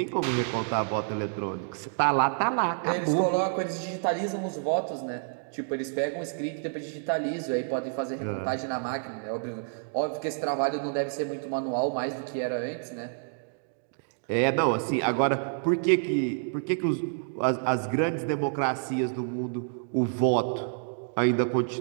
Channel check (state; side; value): silent; left; digital silence